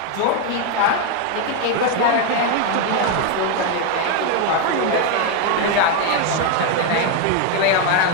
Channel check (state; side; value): different; both; correlation 0.01